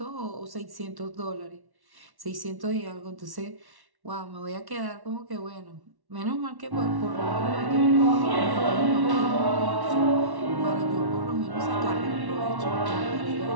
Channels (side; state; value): left; late; 1.1 ms